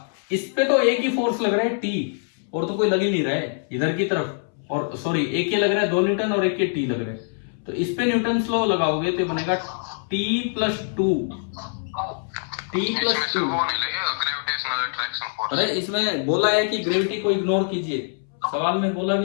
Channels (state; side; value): silent; right; 63 dB below the other